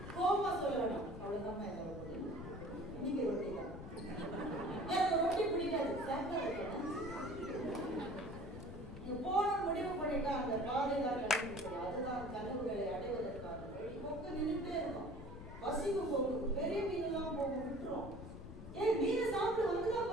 கோபமா சொல்ல வேணாம். அவ்வளவுதான் என்னோட முடியும். இன்னைக்கு ரொட்டி தான். எனக்கு ரொட்டி பிடிக்காது, சாப்பிட வைக்கணும். நீங்க போன முடிவு பண்ணிட்டா அந்த பாதை தான் கிடைக்கும். அதுதான் கனவுகளை அடைவதற்கான வழி. கொக்கு நின்றுட்டே இருக்கும். பசிக்கு கொக்கு பெரிய மீன் எல்லாம் போக விட்டுரும். ஏன் மீனை சாப்பிட்டு வந்துதான்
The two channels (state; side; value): noise; left; rumble, 12 dB below the sound